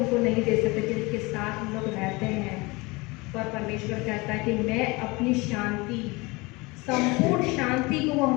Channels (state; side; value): quieter; right; 24.5 dB